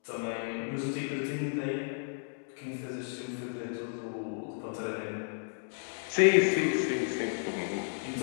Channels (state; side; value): silent; right; digital silence